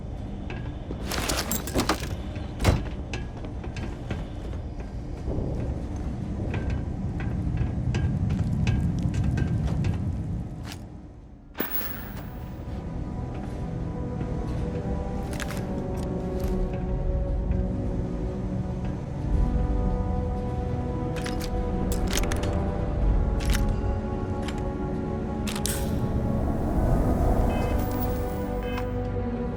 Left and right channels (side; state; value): both; identical; correlation 1.00